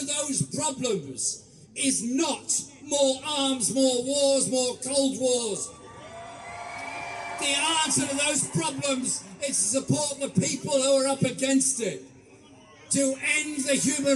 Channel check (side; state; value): both; identical; correlation 1.00